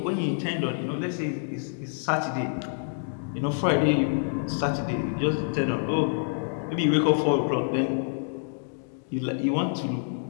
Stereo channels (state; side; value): silent; right; digital silence